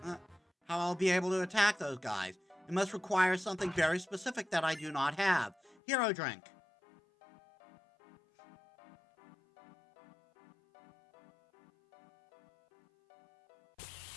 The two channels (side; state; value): right; drops out; at 5.8 s